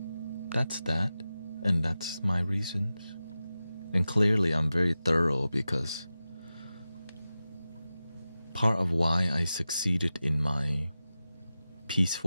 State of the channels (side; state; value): both; inverted; correlation -0.94